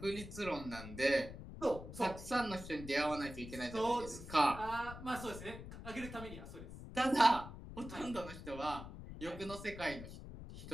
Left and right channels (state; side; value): noise; left; rumble, 11 dB below the sound